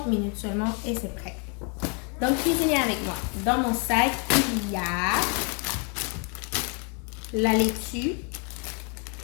minutes seulement et c'est prêt. Donc cuisinez avec moi. Dans mon sac, il y a la laitue,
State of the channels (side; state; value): right; quieter; 36.4 dB